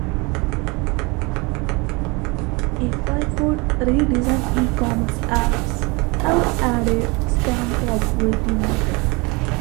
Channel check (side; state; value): left; quieter; 27.2 dB